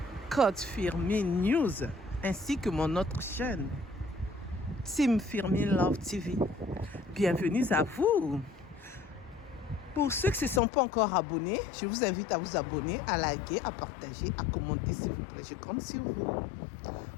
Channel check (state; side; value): drops out; right; at 10.6 s